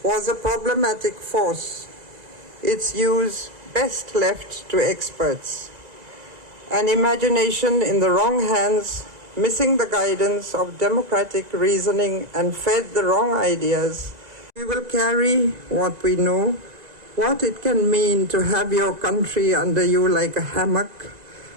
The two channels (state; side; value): late; left; 1.9 ms